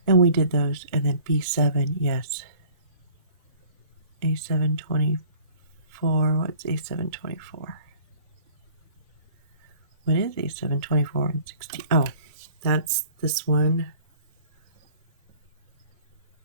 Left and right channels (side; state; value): both; inverted; correlation -0.51